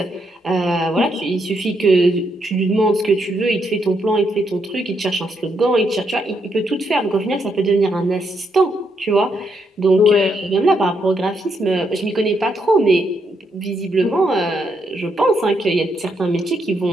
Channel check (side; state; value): both; normal; correlation 0.78